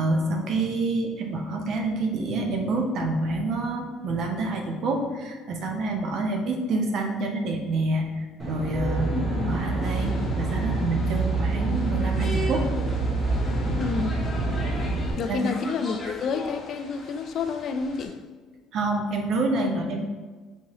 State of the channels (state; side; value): normal; both; correlation 0.63